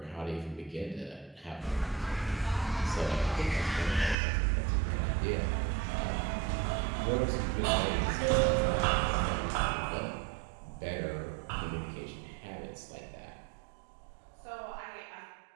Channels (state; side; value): drops out; left; at 4.2 s